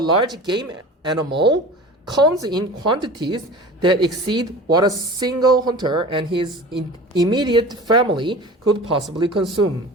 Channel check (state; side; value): normal; both; correlation 0.37